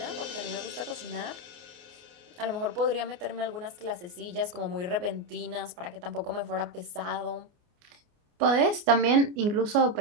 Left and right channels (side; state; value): left; late; 29 ms